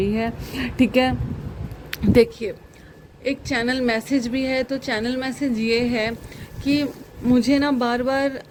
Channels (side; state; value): both; identical; correlation 1.00